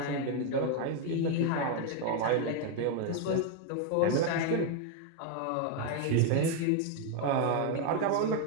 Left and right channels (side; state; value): both; different; correlation 0.01